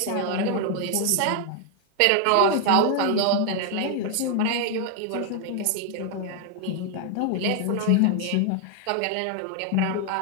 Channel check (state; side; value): different; both; correlation 0.00